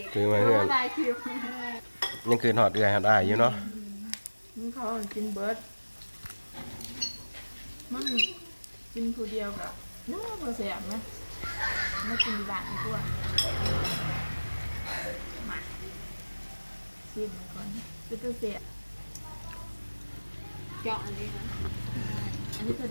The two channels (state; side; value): inverted; both; correlation -1.00